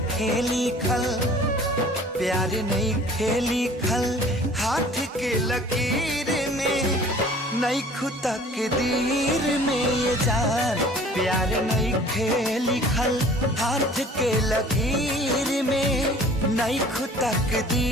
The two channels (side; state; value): both; normal; correlation 0.49